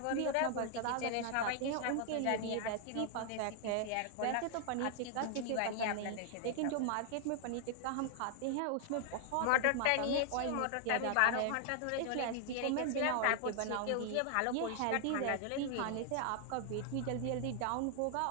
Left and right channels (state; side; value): different; both; correlation 0.00